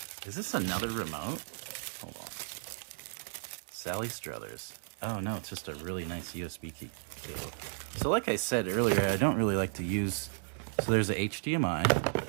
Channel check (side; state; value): left; silent; digital silence